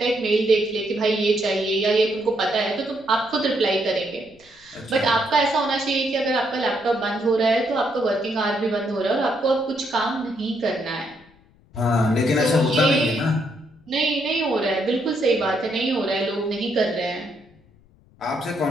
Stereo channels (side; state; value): left; noise; rumble, 30 dB below the sound